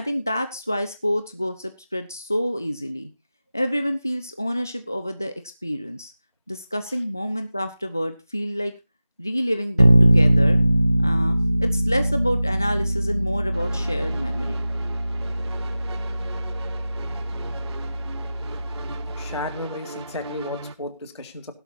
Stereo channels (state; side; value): inverted; both; correlation -0.96